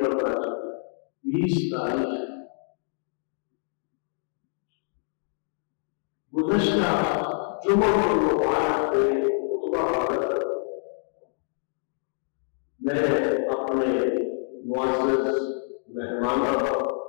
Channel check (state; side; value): silent; right; digital silence